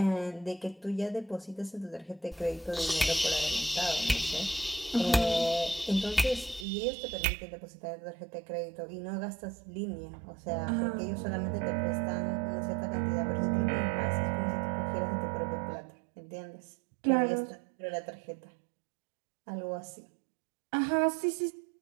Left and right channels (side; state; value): left; drops out; at 6.7 s